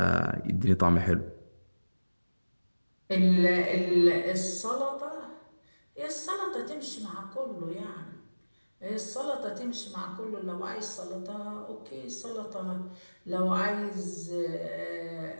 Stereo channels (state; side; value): inverted; both; correlation -1.00